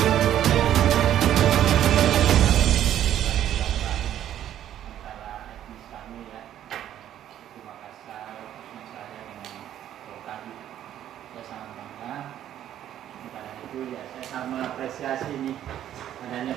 Ya, saya sangat mengapresiasi nih adanya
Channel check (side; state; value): left; quieter; 11.3 dB